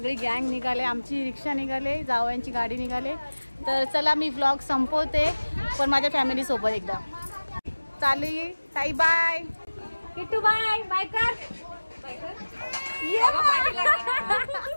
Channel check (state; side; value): inverted; both; correlation -1.00